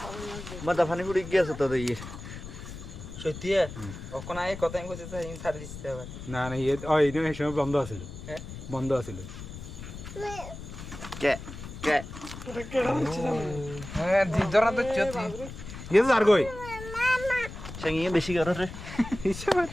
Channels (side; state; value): left; noise; rumble, 11 dB below the sound